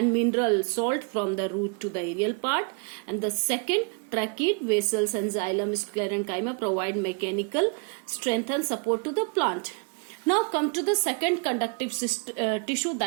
mineral salt from the root to the aerial part, and the second, tracheid vessels and xylem sclerenchyma provide mechanical strength and support to the plant. Now come to the second conductive tissue,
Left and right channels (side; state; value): left; quieter; 36.5 dB